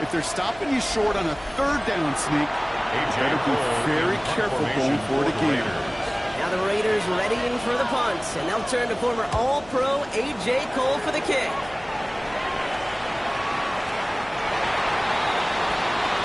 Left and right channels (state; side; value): noise; left; hum, 22 dB below the sound